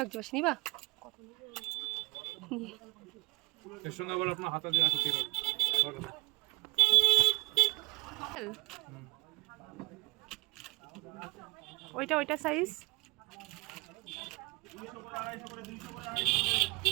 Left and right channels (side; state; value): left; quieter; 25.0 dB